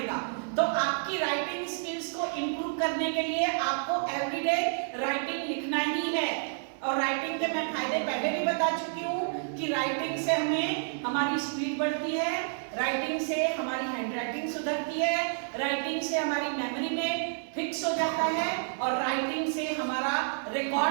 तो आपकी राइटिंग स्किल्स को इंप्रूव करने के लिए आपको एवरीडे राइटिंग लिखना ही है। और राइटिंग के मैं फायदे पहले भी बता चुकी हूँ कि राइटिंग से हमें हमारी स्पीड बढ़ती है, राइटिंग से हमारी हैंडराइटिंग सुधरती है, राइटिंग से हमारी मेमोरी में फिक्स हो जाता है और राइटिंग से हमारा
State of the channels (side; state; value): left; silent; 58 dB below the other